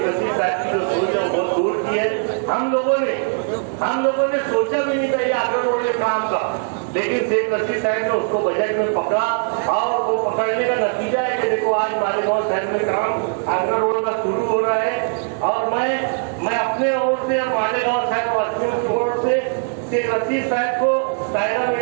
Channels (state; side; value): silent; left; 58 dB below the other